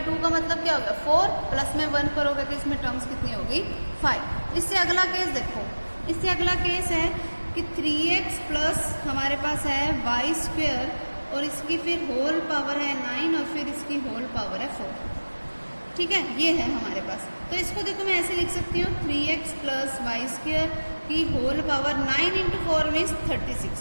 का मतलब क्या होगा, 4 प्लस में 1 करोगे तो इसमें टर्म्स कितनी होगी, 5। इससे अगला केस देखो, इससे अगला केस है कि 3x प्लस हमारे पास है y स्क्वेयर और इसकी फिर होल पावर है 9 और फिर इसकी होल पावर है 4। ठीक है, ये है हमारे पास। तो इसको देखो मैं ऐसे लिख सकती हूँ, 3x प्लस वाई स्क्वेयर की होल पावर 9 इंटू 4 मीन्स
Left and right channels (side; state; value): both; inverted; correlation -1.00